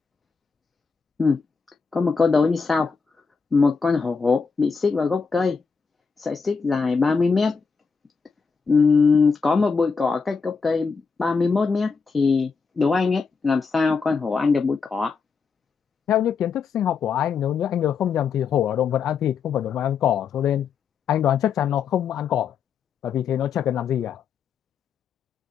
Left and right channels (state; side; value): quieter; right; 5.4 dB